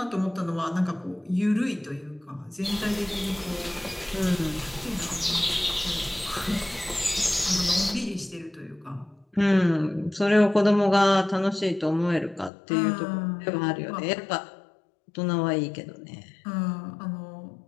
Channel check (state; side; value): drops out; right; at 12.5 s